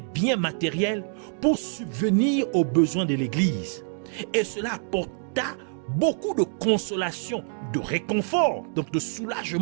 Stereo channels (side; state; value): left; silent; 61 dB below the other